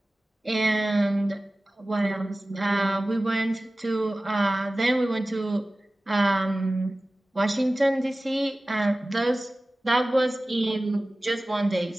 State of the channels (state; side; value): normal; both; correlation 0.97